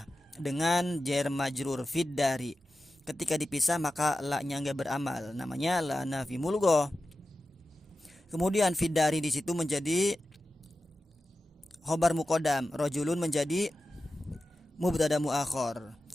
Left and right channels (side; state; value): both; normal; correlation 0.93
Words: dengan jar majrur fiddari. Ketika dipisah maka la-nya enggak beramal, namanya la nafi mulgo. Kemudian fiddari di situ menjadi khobar muqaddam, rojulun menjadi mubtada muakhir.